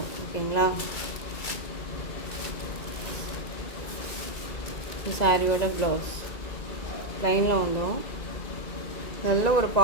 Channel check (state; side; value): late; right; 2.0 ms